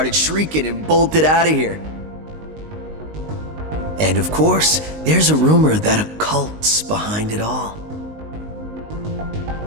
shrieking and bolted out of here. And of course, there's a rumor that a cult's behind it all.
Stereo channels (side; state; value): left; late; 19 ms